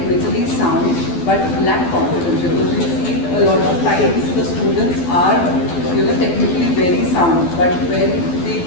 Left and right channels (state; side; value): late; right; 12 ms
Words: sound but lack confidence? Because we see a lot of times the students are technically very sound, but when they